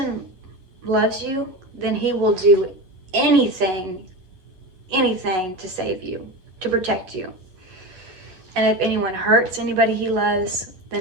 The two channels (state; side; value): late; left; 11 ms